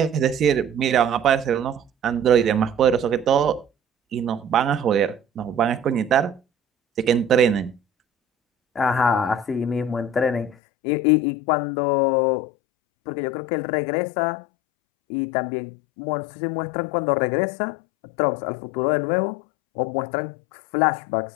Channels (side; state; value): right; drops out; at 10.6 s